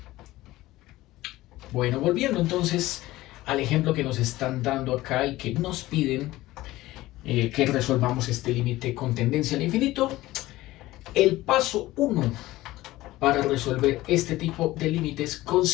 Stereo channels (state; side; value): quieter; right; 17.4 dB